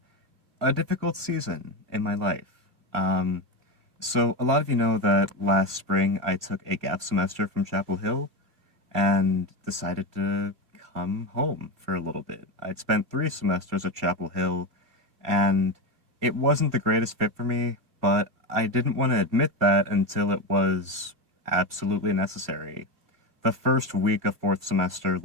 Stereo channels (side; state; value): left; late; 2.5 ms